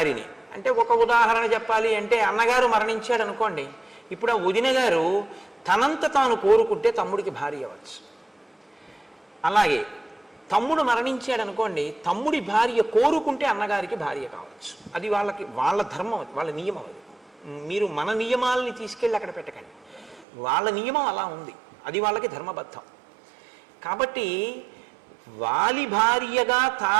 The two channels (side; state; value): left; drops out; at 20.2 s